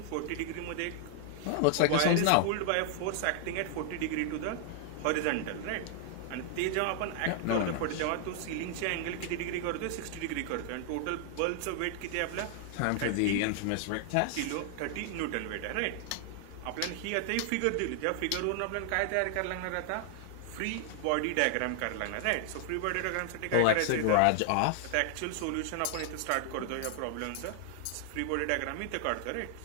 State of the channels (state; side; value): different; both; correlation 0.00